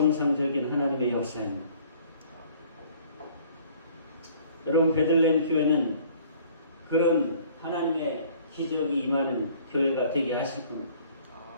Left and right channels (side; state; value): both; inverted; correlation -0.55